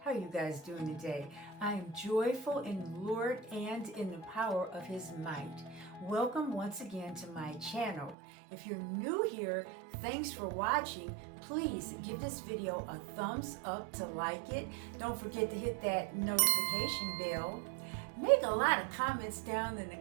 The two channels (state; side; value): drops out; left; at 8.2 s